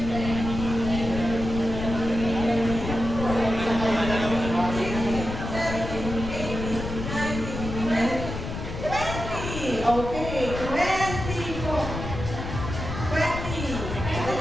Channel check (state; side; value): noise; left; rumble, 6 dB below the sound